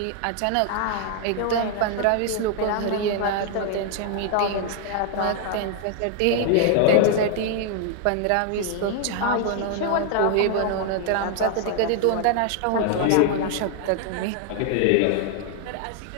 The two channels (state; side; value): different; both; correlation 0.00